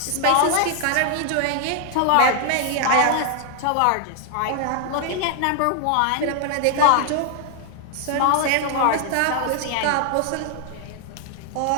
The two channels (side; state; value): both; different; correlation 0.00